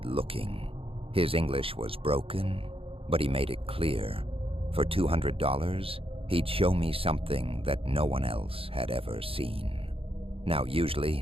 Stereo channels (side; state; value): left; late; 0.27 ms